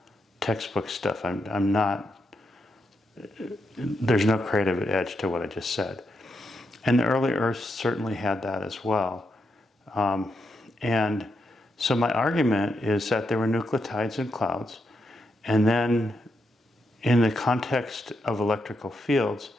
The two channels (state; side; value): normal; both; correlation 0.83